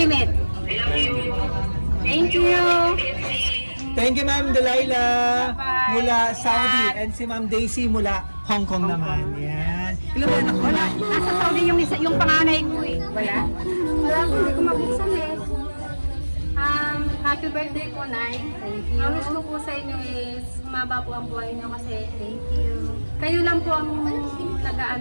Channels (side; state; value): both; inverted; correlation -1.00